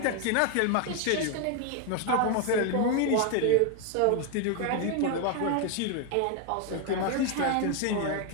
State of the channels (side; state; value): both; different; correlation 0.01